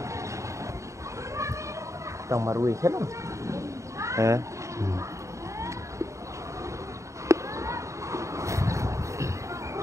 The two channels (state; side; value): late; left; 0.15 ms